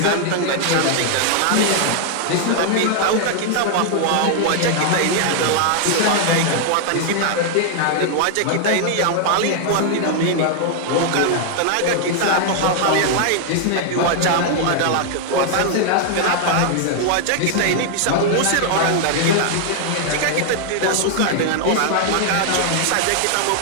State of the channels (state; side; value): different; both; correlation 0.00